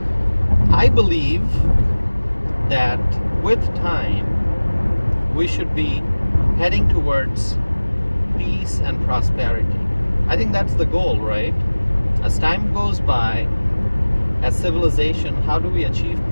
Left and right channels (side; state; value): both; inverted; correlation -1.00